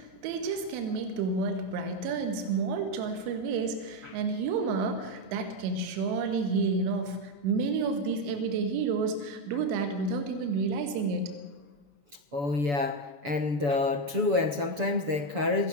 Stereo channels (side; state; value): left; late; 7.0 ms